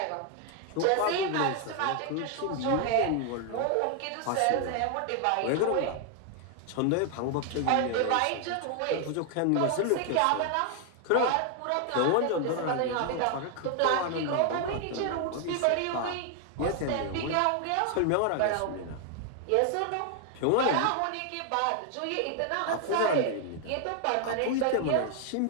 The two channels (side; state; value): both; different; correlation 0.00